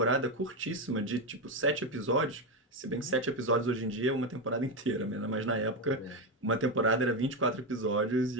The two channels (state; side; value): normal; both; correlation 0.11